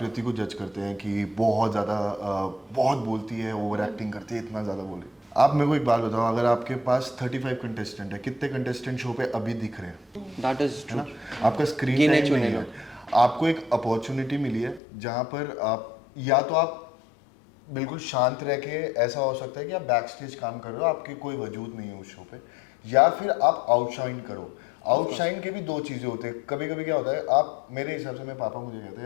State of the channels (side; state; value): right; drops out; at 14.8 s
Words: को जज करते हैं कि बहुत ज़्यादा बहुत बोलती है, ओवर एक्टिंग करती है, इतना ज़्यादा बोले। आप मेरे को एक बात बताओ, अगर आपके पास 35 कंटेस्टेंट है, कितने कंटेस्टेंट शो पे अभी दिख रहे हैं? दैट इज है ना, आपका स्क्रीन टाइम नहीं है। आपको एक अपॉर्चुनिटी मिली है जहाँ पर आप या तो आप बिल्कुल शांत रह के, ऐसा हो सकता है कि आप बैक स्टेज काम कर रहे हो, आपके कोई वजूद नहीं है उस शो पे, या फिर आप आउटशाइन करो। आउटशाइन के भी दो चीज़ें होते हैं। कभी कभी क्या होता है, आप, मेरे हिसाब से, मेरे पापा मुझे कहते